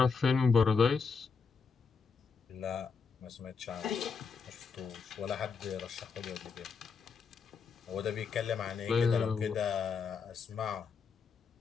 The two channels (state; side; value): quieter; right; 5.4 dB